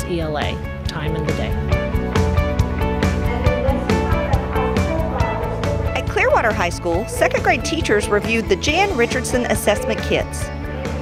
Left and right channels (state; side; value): identical; both; correlation 1.00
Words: ELA, time in the day. At Clearwater High School, 2nd grade teachers reviewed the Jan Richardson assessment kits.